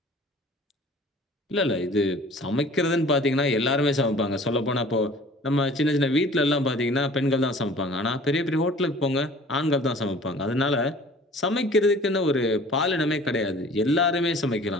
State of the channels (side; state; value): both; normal; correlation 0.48